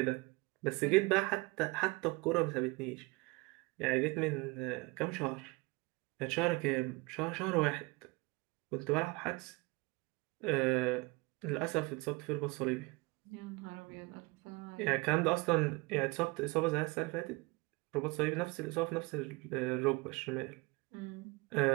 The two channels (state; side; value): quieter; left; 25.3 dB